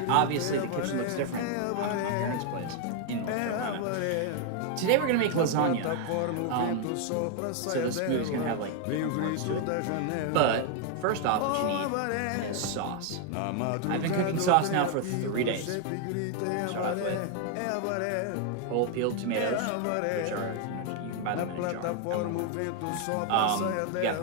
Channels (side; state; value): both; different; correlation 0.00